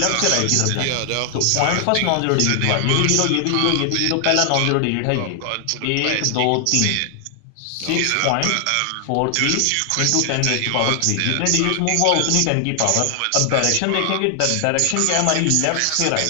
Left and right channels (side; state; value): both; different; correlation 0.00